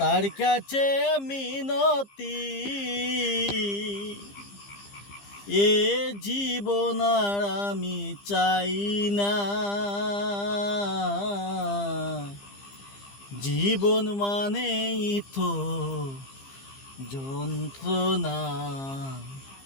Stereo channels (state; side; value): late; right; 15 ms